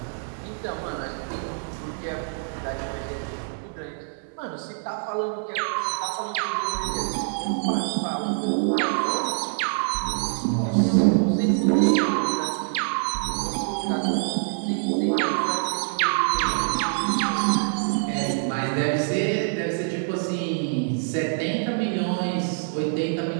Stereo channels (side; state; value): left; silent; 61 dB below the other